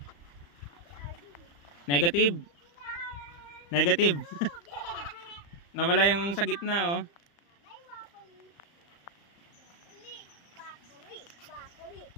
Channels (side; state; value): right; late; 35 ms